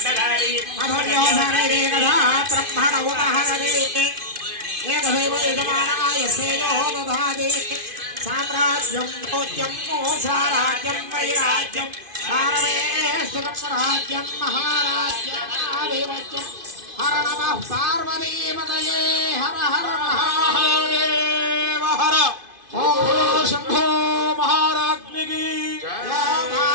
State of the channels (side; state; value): left; late; 2.5 ms